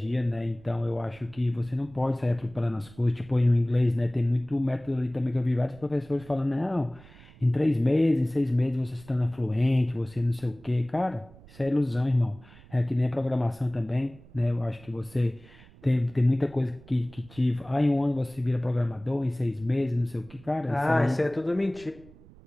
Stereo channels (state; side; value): noise; right; rumble, 23 dB below the sound